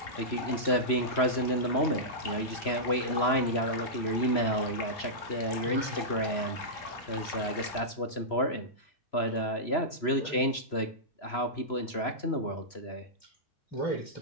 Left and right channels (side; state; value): right; late; 3.0 ms